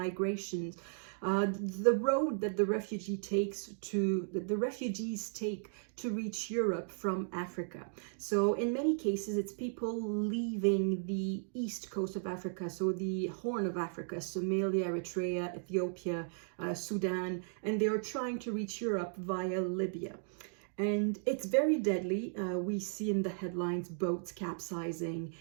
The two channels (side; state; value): left; silent; digital silence